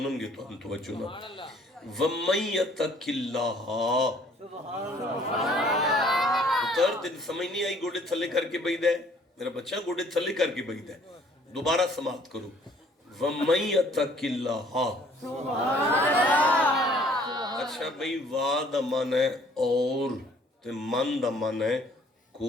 گے تو ہم توجہ نہ. وَمَن يَتَّقِ اللَّهَ. پتر تین سمجھ نہیں آئی گوڑے تھلے کر کے بیدہ ہے میرا بچہ گوڑے تھلے کر کے بیدہ ہے. دوبارہ سماعت کرو. وَمَن يَتَّقِ اللَّهَ. اچھا بھئی وا دا من ہے اور تے من دا من ہے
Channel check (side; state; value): both; normal; correlation 0.58